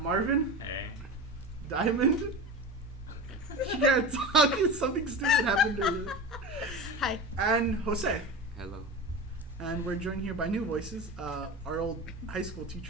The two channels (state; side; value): normal; both; correlation 0.28